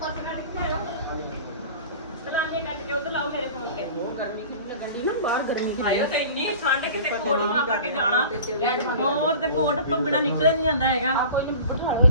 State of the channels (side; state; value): both; inverted; correlation -0.40